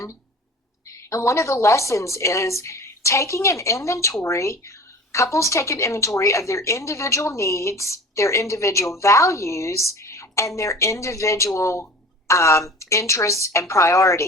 And one of the lessons is taking an inventory. Couples take an inventory of their individual needs, their individual values, and their individual interests and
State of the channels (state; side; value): normal; both; correlation 0.39